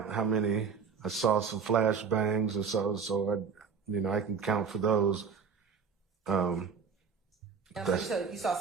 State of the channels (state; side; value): quieter; left; 6.0 dB